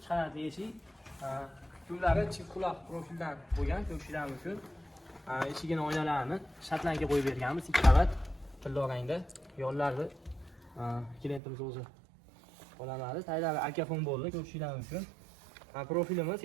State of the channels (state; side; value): drops out; left; at 11.4 s